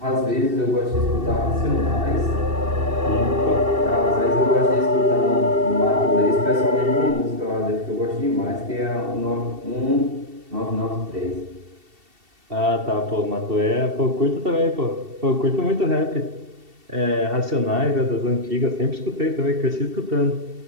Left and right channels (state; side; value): late; left; 2.7 ms